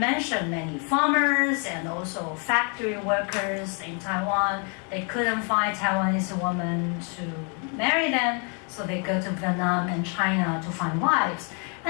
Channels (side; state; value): right; quieter; 37.5 dB